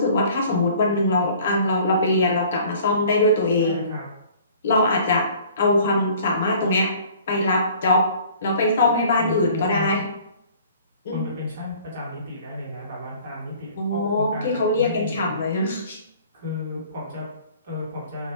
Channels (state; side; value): inverted; both; correlation -0.52